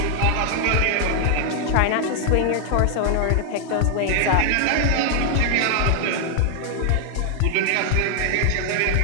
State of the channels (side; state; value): both; different; correlation 0.00